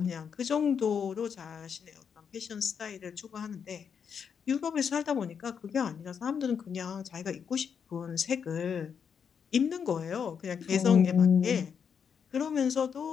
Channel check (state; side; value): quieter; right; 7.0 dB